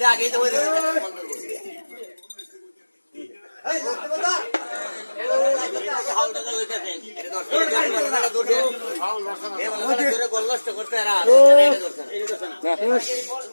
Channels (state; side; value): inverted; both; correlation -1.00